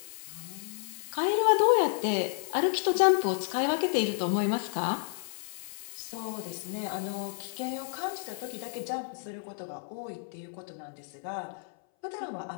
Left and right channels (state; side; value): silent; right; 57 dB below the other